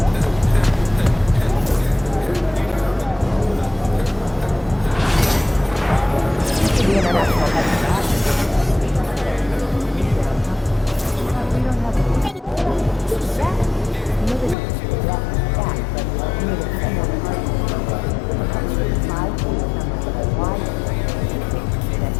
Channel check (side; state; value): right; drops out; at 14.6 s